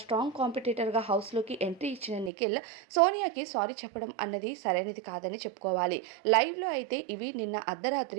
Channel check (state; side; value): drops out; left; at 2.3 s